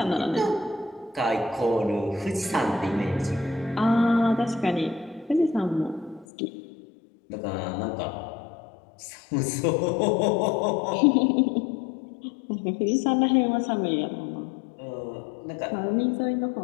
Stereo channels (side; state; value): right; drops out; at 6.2 s